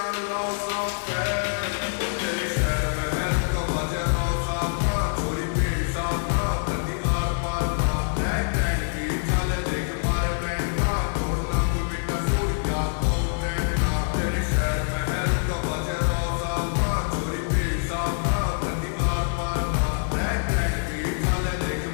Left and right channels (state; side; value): silent; right; 62 dB below the other